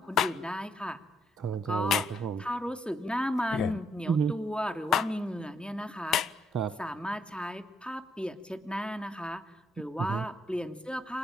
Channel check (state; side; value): normal; both; correlation 0.73